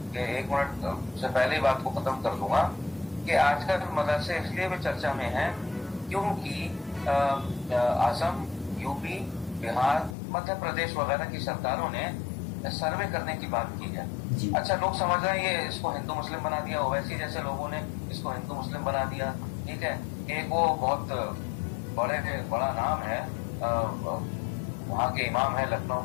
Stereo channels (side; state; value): right; drops out; at 10.2 s